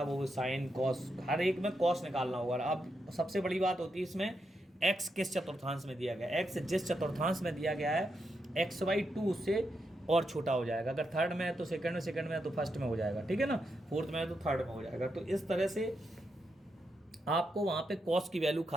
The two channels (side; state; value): both; normal; correlation 0.83